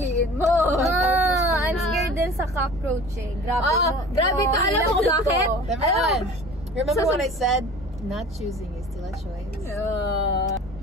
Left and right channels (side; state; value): both; normal; correlation 0.43